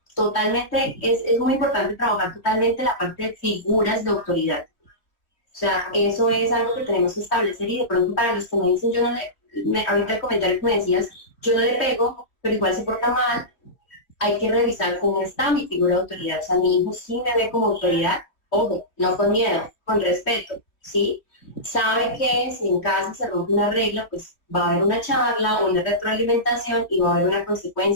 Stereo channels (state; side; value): late; right; 3.0 ms